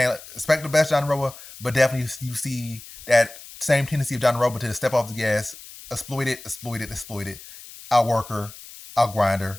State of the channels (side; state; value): left; noise; hiss, 17 dB below the sound